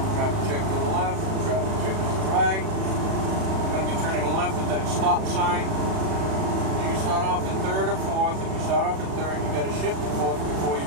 Traffic check to the left, traffic check to the right. I'm going to be turning left at that stop sign. You can start off in 3rd or 4th. If you start off in 3rd, you got to shift to 4th before you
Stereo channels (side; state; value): left; late; 36 ms